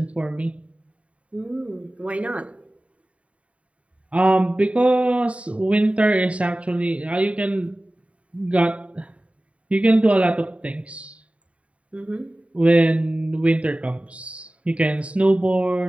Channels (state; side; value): late; left; 0.064 ms